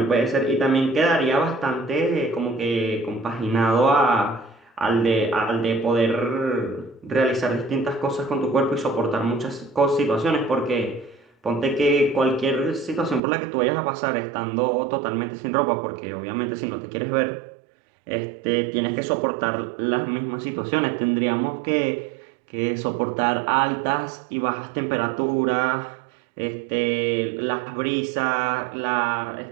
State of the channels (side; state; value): left; drops out; at 13.2 s